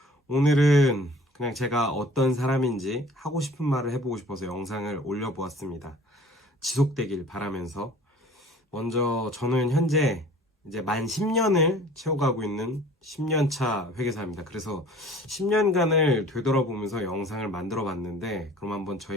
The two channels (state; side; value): normal; both; correlation 0.49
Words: 오늘은 그냥 제가 어떤 사람인지 하고 싶은 말을 해보고 싶어서 영상을 올려보았습니다. 지속되길 바라면서 먼저 저는 현재 이제 만 10년을 채워가고 있는 10년차 회계사입니다. 그래서 10년간을 되돌아보면서 영상을 만들어 봤는데 그럼 한번